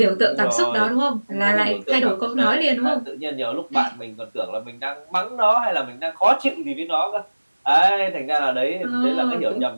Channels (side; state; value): both; inverted; correlation -1.00